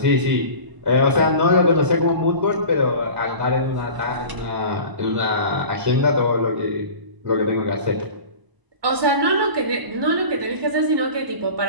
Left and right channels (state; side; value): late; left; 1.0 ms